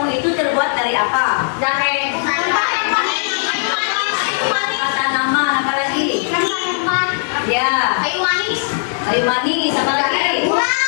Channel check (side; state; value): right; silent; digital silence